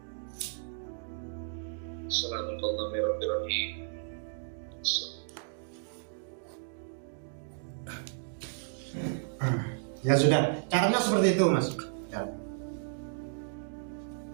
Assalamualaikum. Ya sudah, caranya seperti itu, Mas. Ya.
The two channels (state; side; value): silent; left; digital silence